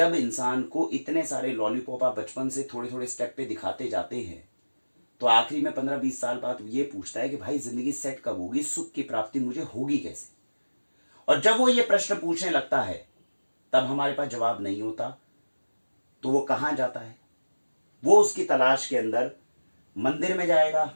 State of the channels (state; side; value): inverted; both; correlation -1.00